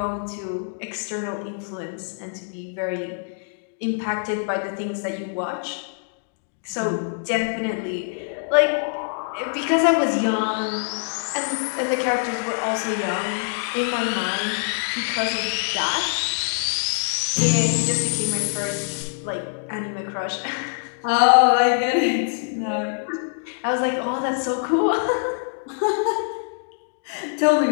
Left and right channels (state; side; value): silent; right; digital silence